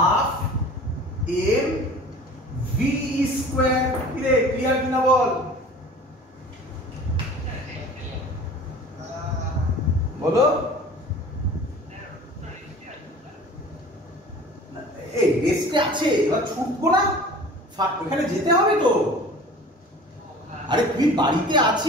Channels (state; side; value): normal; both; correlation 0.43